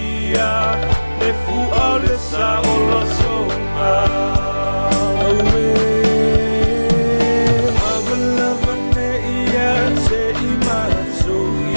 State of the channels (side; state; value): both; inverted; correlation -1.00